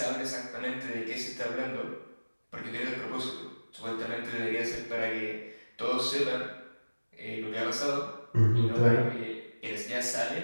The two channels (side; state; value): both; inverted; correlation -1.00